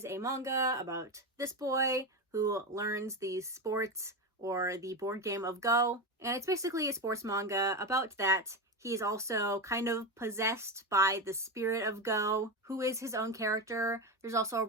a manga about this boy who learns these sports or the board game of Go. And it's basically a sports manga about that. He is also kind of possessed by the spirit of Go, who is his own character. There's also a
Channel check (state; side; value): normal; both; correlation 0.16